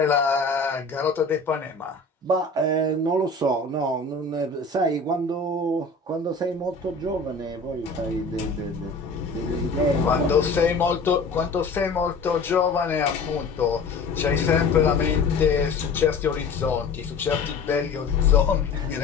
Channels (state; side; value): quieter; right; 3.9 dB